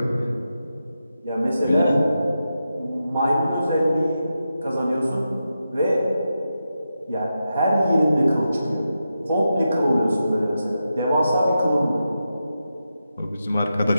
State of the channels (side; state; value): both; inverted; correlation -0.88